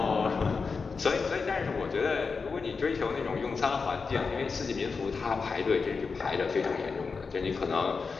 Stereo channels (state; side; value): quieter; right; 4.9 dB